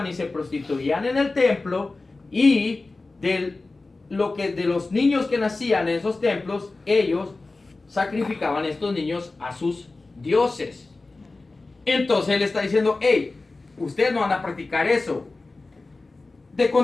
y se prostituían en el templo, y de los niños que nacían en esos templos, ellos sacrificaban a estos niños a sus dioses. Entonces él está diciendo, hey, ustedes no van a practicar eso de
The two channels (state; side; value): quieter; right; 3.4 dB